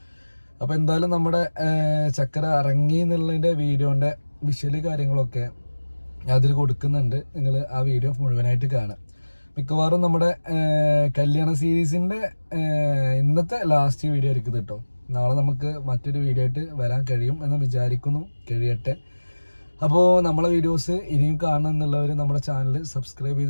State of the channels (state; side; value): inverted; both; correlation -1.00